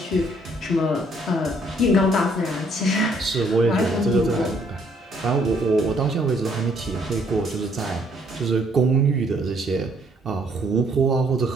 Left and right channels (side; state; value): both; normal; correlation 0.66